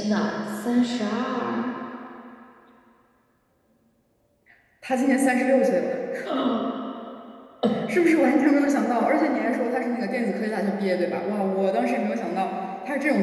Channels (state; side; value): identical; both; correlation 1.00